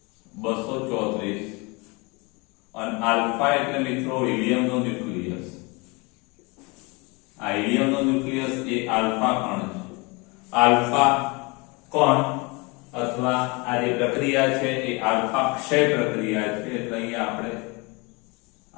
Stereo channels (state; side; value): quieter; right; 27.8 dB